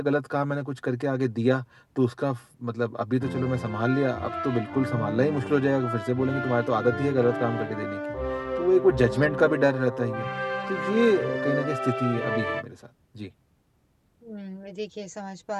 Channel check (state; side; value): identical; both; correlation 1.00